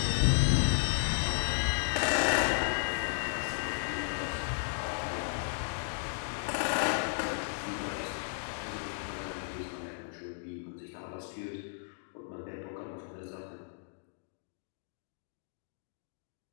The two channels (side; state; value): right; silent; digital silence